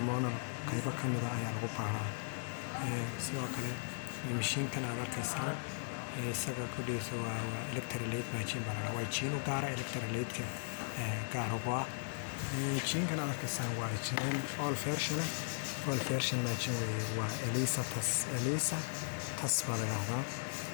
qaybo ka mid ah ayaa lagu baaraa sidoo kale mashiinkan aad arkaysaan isaga ku dhiisa waa electrolyte machine baa la dhahaa waa injiin u gaara electrolytka gaar ugu ah injiinkan aad arkaysaan waa injiin all version machine weeye waa ELISA tas baa la dhahdaa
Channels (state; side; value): silent; right; 53 dB below the other